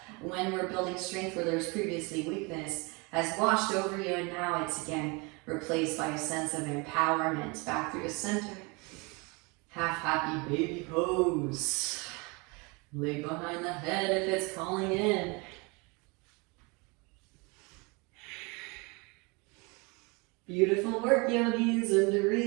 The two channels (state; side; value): quieter; left; 28.7 dB